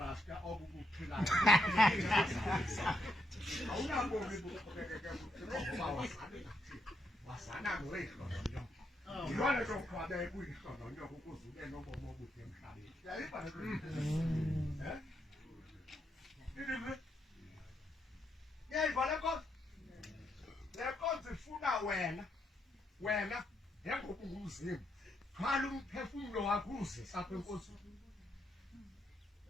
obubuphilayo. Awunabomi buqhubekeke buphila ngoba wasana noyihlononyo. Yilona nto kuthiwa bebuyihlononyo ukuze ube nobomi obude emhlabeni. Yayiba yayivala le nkonzo ifuna wena njengoba ungumzimba thwala umphefumlo wakho uzisa apha enkosini.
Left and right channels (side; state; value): both; normal; correlation 0.78